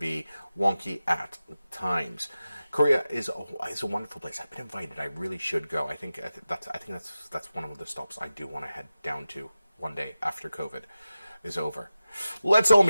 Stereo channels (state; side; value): inverted; both; correlation -0.94